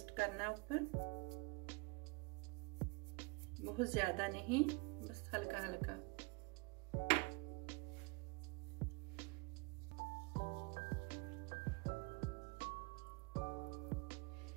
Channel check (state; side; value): quieter; left; 28.8 dB